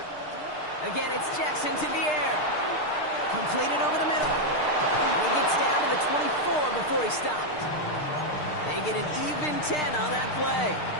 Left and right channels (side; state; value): right; late; 6.6 ms